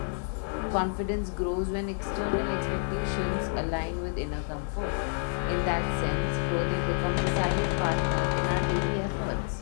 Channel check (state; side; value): silent; right; 59 dB below the other